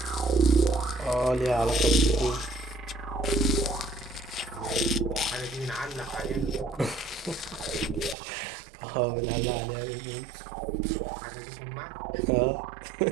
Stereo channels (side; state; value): left; drops out; at 8.2 s